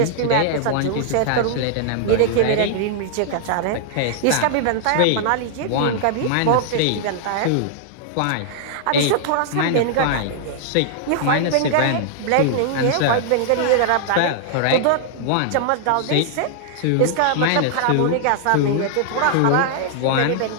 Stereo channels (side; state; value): both; different; correlation -0.01